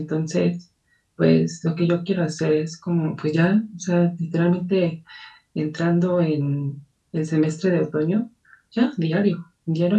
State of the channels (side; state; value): both; identical; correlation 1.00